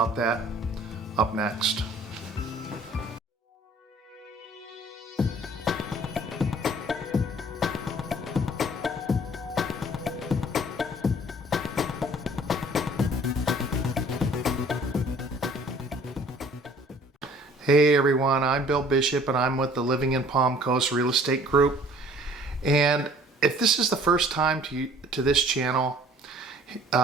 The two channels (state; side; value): normal; both; correlation 0.54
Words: that up next. Hey everyone, I'm Bill Bishop and I'm with the Living in Palm Coast Real Estate Group. And if this is the first time to this channel